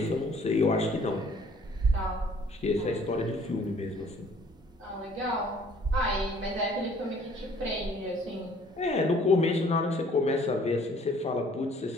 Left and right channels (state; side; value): normal; both; correlation 0.57